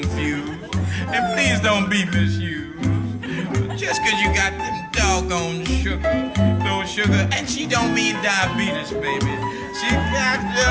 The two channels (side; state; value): both; identical; correlation 1.00